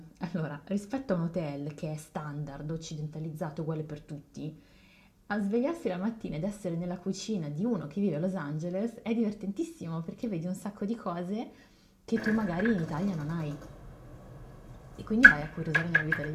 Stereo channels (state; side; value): identical; both; correlation 1.00